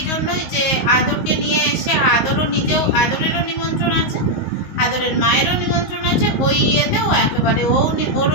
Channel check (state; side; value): late; right; 19 ms